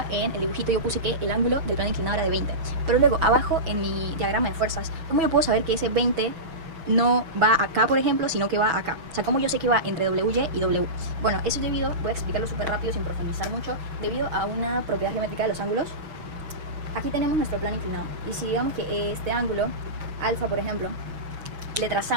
en el dibujito yo puse que el ángulo del plano inclinado era de 20, pero luego abajo en mi diagrama de fuerzas, ¿cómo yo puedo saber que ese 20 no va acá, por ejemplo, sino que va acá? O sea, ¿cómo yo sé que va entre WY y W? Bueno, eso es debido, voy a explicarlo súper rápido sin profundizar mucho, debido a una propiedad geométrica de los ángulos. Aquí tenemos nuestro plano inclinado, y si digamos que este ángulo, alfa, por ejemplo, le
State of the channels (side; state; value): left; late; 6.0 ms